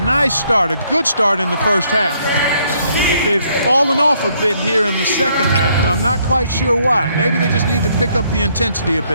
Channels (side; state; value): both; inverted; correlation -0.69